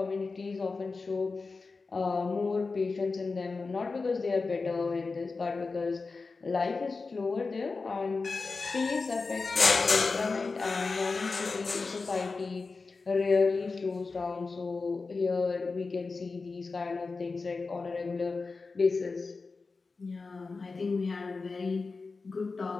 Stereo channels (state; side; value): quieter; right; 4.1 dB